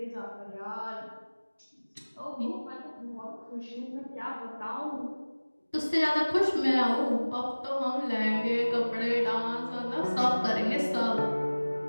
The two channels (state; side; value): inverted; both; correlation -1.00